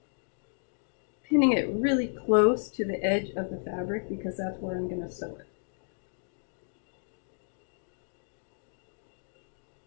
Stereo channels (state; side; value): silent; right; digital silence